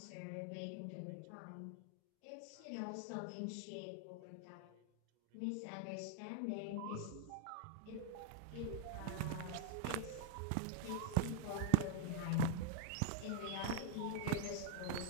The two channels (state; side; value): different; both; correlation -0.01